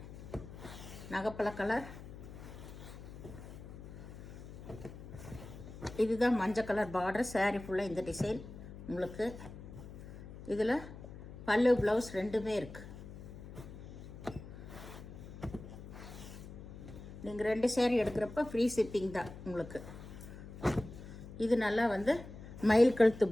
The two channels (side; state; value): left; noise; hum, 13 dB below the sound